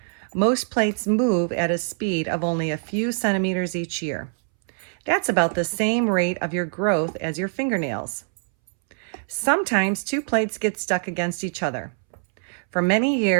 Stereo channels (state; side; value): silent; left; 63 dB below the other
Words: Most plates move at a speed of only a few centimeters each year. That's about the same rate of your growth as your fingernails. Sometimes two plates get stuck against each other. For many